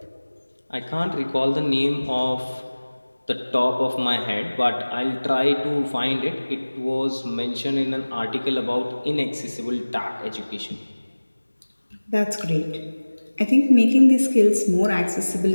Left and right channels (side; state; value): both; inverted; correlation -1.00